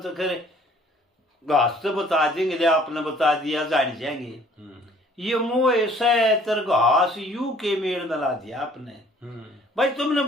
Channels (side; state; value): both; normal; correlation 0.56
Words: करे घास तो बता देंगे ले आपने बता दिया जान जाएंगे ये मोह सैतर घास यू के मेड़ में ला दिया आपने भाई तुमने